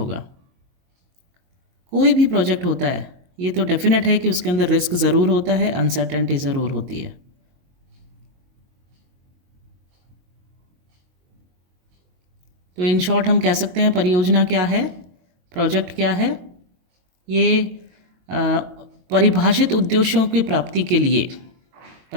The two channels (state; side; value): late; left; 22 ms